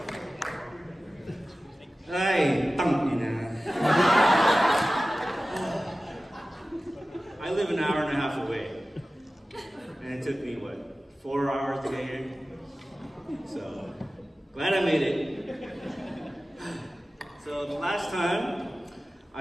Ay, tangina. I live an hour and a half away. And it took me, what, 4 hours to get here? So, glad I made it. So, the last time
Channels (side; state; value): both; normal; correlation 0.96